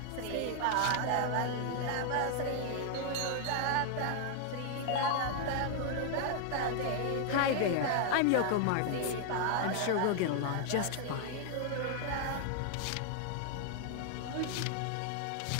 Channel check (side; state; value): both; different; correlation 0.00